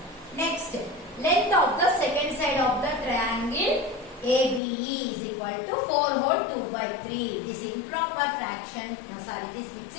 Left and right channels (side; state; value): right; drops out; at 4.6 s